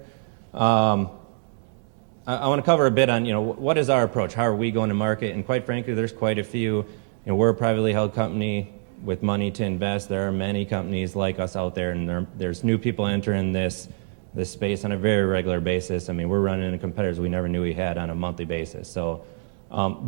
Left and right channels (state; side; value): silent; left; digital silence